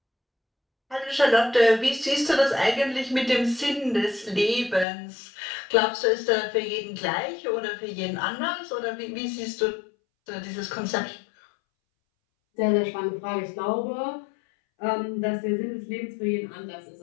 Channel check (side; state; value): right; drops out; at 4.9 s